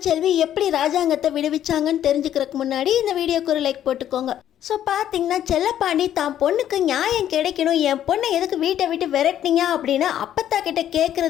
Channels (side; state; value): right; quieter; 11.0 dB